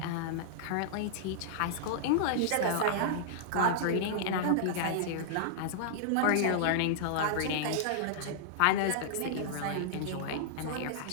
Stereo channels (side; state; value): both; different; correlation -0.02